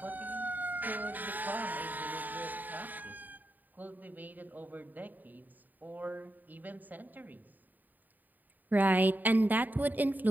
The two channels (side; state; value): left; late; 0.086 ms